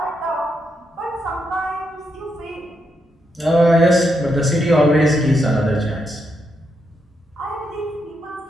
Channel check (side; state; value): both; normal; correlation 0.81